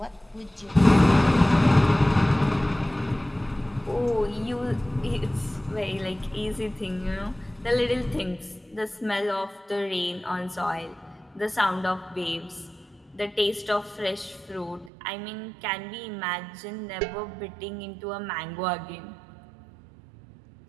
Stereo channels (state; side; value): drops out; left; at 14.9 s